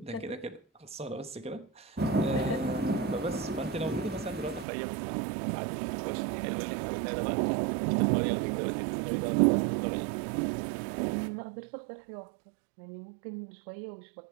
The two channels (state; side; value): drops out; left; at 4.7 s